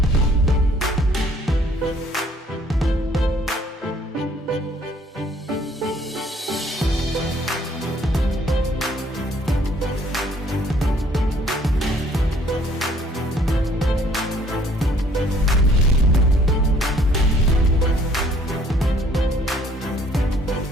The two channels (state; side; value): normal; both; correlation 0.60